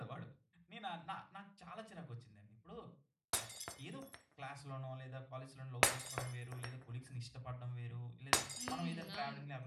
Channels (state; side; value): identical; both; correlation 1.00